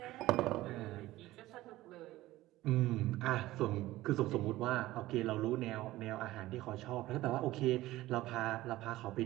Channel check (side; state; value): left; quieter; 16.8 dB